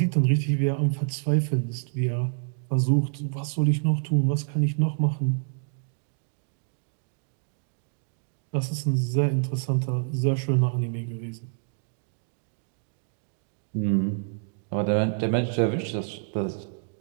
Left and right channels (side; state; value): left; silent; digital silence